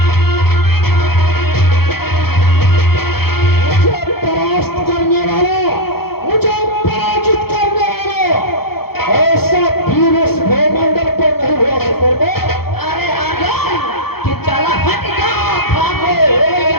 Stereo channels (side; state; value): right; late; 0.96 ms